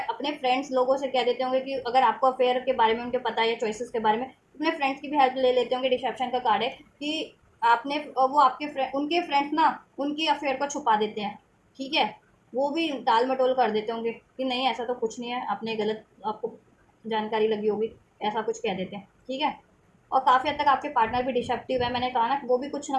अपने फ्रेंड्स लोगों से कह देते होंगे कि अगर आपको अफेयर के बारे में उनके पता है, या चॉइसेस के बारे में, अपने फ्रेंड्स की भी हेल्प ले लेते होंगे। डिसेप्शन का कार्ड है कि आपने, वो आपके उनके फ्रेंड्स ना उनकी अफेयर को छुपा देते हैं, ठीक है, वो भी टाल मटोल कर देते होंगे कि नहीं ऐसा तो कुछ नहीं है, आपने गलत, आपको जानकारी लगी होगी, ऐसा कुछ कह देते हैं, ठीक है। और काफ़ी हद तक आपके पार्टनर भी डिसेप्टिव है, मैंने कहा ना, वो भी कुछ ना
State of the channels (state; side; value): identical; both; correlation 1.00